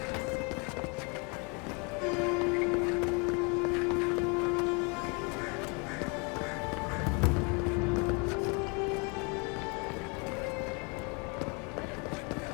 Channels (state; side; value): quieter; right; 32.3 dB